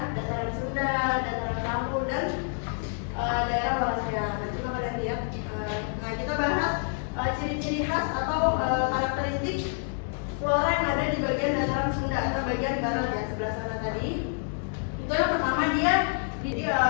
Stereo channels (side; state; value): right; silent; 58 dB below the other